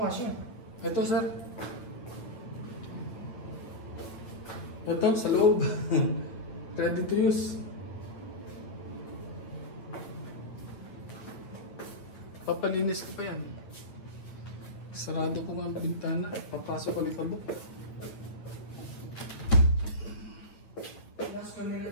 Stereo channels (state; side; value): late; right; 9.1 ms